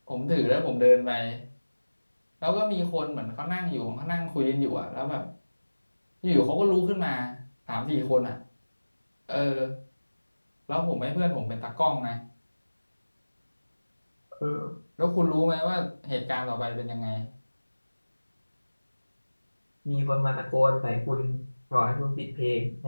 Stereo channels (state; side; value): inverted; both; correlation -1.00